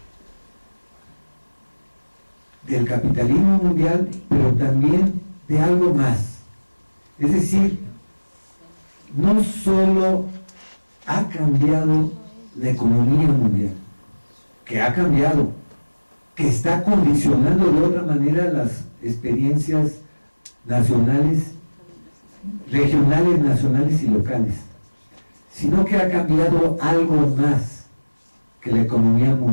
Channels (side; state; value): both; inverted; correlation -1.00